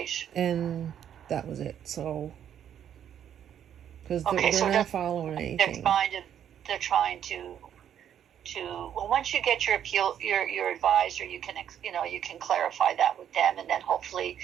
Right. and that was it. So, because Okay, they're so not following they're anything. trying to they're trying to well, once you get your appeal, your advisor, you can you can clarify that with them, and then hopefully,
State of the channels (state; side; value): quieter; left; 9.6 dB